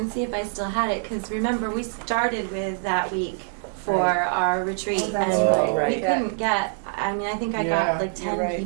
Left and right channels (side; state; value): left; silent; 62 dB below the other